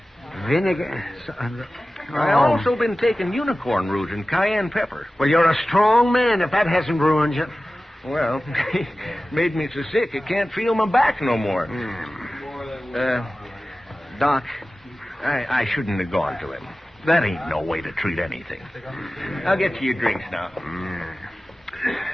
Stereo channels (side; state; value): both; normal; correlation 0.96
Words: Vinegar? I've also been taking unicorn root and cayenne pepper. Well, you're a strong man if that hasn't ruined you. Well, made me so sick I can't feel my back no more. Doc, I shouldn't have gone to him. That ain't no way to treat anything. I'll get you your drinks now.